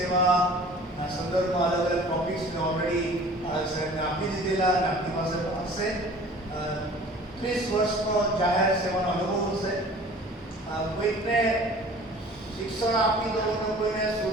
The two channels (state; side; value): normal; both; correlation 0.46